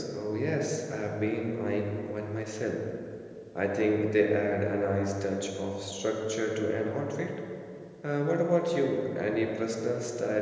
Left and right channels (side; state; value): both; identical; correlation 1.00